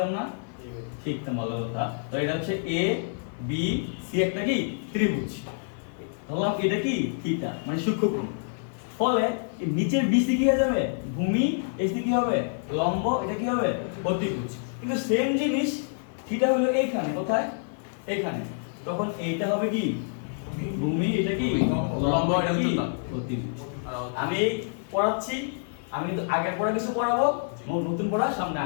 না? শিখতাম, ভালো কথা। তো এটা হচ্ছে এ বি সি একটা কি ত্রিভুজ, ধরলাম এটা কি থিটা, মানে সূক্ষ্মকোণ। ফলে এই নিচের বিসি কি হয়ে যাবে? ভূমি। এসি কি হবে? লম্ব। এটা কি হবে? অতিভুজ। কিন্তু সেম জিনিস থিটা হলো এইখানে, কোথায়? এইখানে। তখন এইটা হবে কি ভূমি, এটা কি লম্ব, এটা কি অতিভুজ। আমি পড়াচ্ছি, আমি কিন্তু আগের পড়া কিছু পড়াবো, নতুন পড়া সামনে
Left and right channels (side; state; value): right; silent; 60 dB below the other